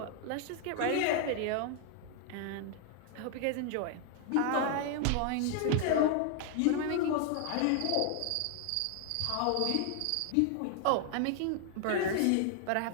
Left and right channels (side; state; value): both; different; correlation 0.00